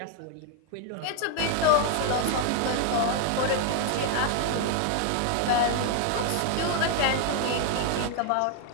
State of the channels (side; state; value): both; different; correlation 0.00